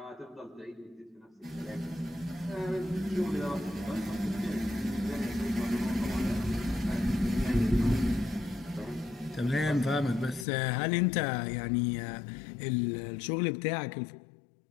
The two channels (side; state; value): right; drops out; at 10.5 s